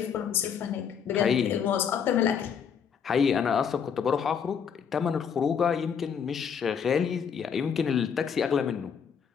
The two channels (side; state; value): right; quieter; 7.2 dB